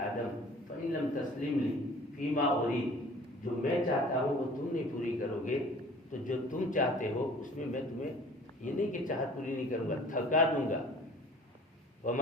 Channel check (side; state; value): both; normal; correlation 0.48